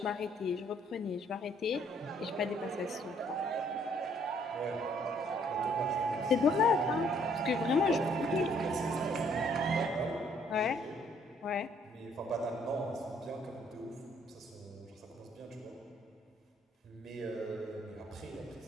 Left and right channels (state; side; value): normal; both; correlation 0.64